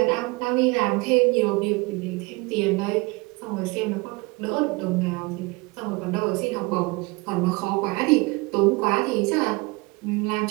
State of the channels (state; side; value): quieter; left; 26.0 dB